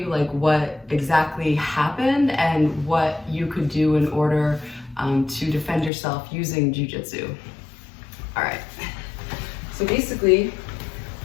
what exactly happened and what you could do in order to defend yourself using jiu-jitsu. All right, so basically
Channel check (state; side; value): drops out; right; at 5.9 s